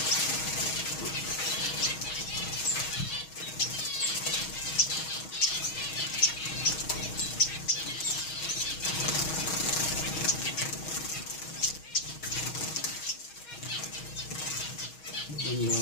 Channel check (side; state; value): right; late; 6.3 ms